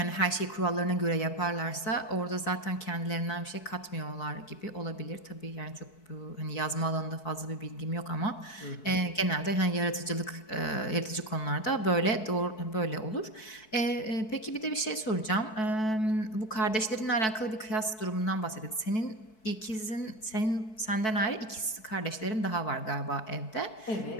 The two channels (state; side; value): late; right; 4.6 ms